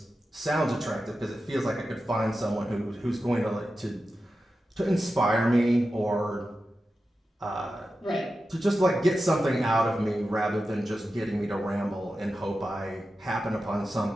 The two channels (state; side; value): normal; both; correlation 0.92